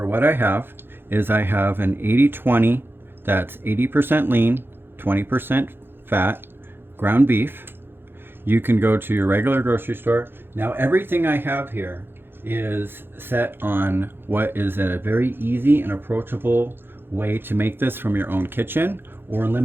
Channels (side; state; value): left; late; 0.10 ms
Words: what I have is I have an 80-20, that's 80% lean, 20% fat, ground beef. You can go to your regular grocery store. Now everything I have here is set on what is a very easy and approachable way to make this from your own kitchen, or a